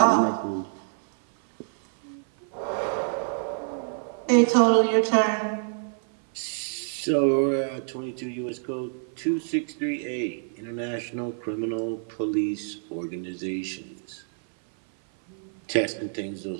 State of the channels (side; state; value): left; silent; 56 dB below the other